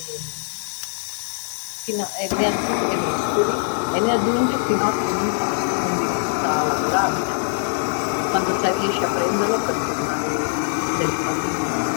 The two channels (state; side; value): silent; right; 64 dB below the other